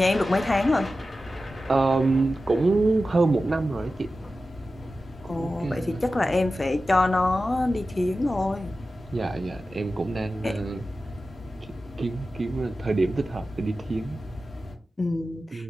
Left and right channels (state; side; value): normal; both; correlation 0.94